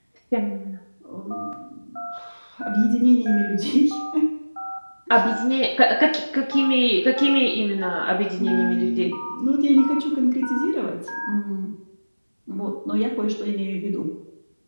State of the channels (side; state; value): both; inverted; correlation -1.00